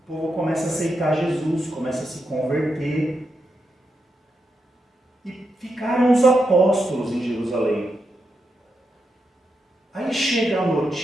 povo começa a aceitar Jesus, começa a se converter. E ficaram os apóstolos em Jerusalém. Aí chega a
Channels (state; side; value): normal; both; correlation 0.85